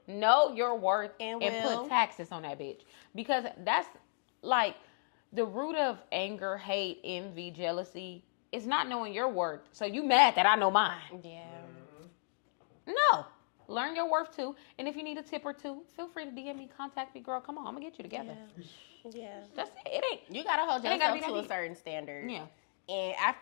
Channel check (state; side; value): silent; right; digital silence